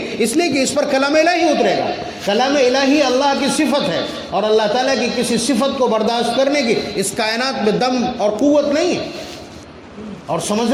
اس لیے کہ اس پر کلام الہی اترے گا۔ کلام الہی اللہ کی صفت ہے، اور اللہ تعالیٰ کی کسی صفت کو برداشت کرنے کی اس کائنات میں دم اور قوت نہیں ہے۔ اور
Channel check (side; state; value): both; identical; correlation 1.00